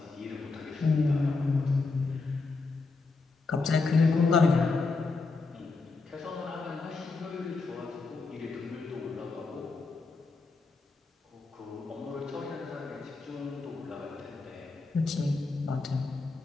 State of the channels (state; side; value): quieter; right; 3.9 dB